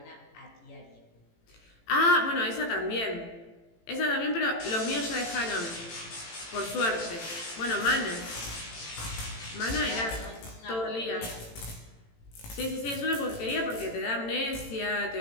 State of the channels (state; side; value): late; right; 18 ms